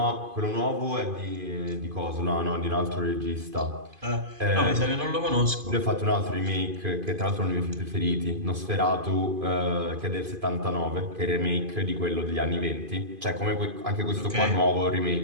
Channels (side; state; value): left; late; 2.5 ms